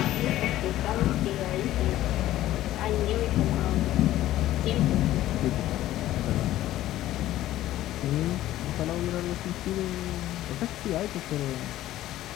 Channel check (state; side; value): quieter; right; 14.3 dB